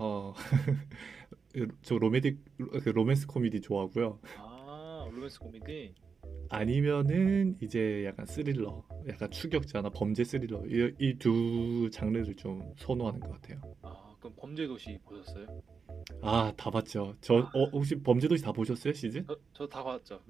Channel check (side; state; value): left; quieter; 5.5 dB